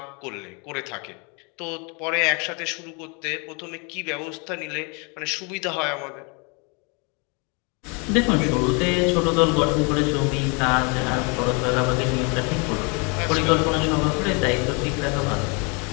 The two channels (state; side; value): quieter; right; 32.9 dB